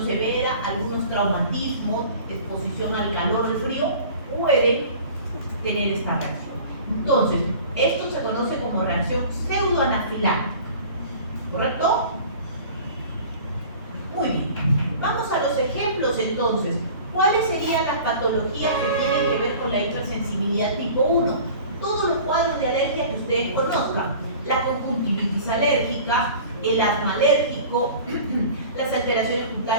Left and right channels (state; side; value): inverted; both; correlation -0.43